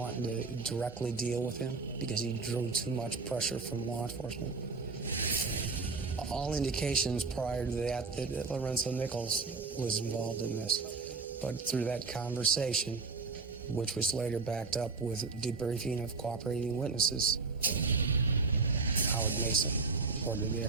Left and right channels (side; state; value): left; quieter; 4.4 dB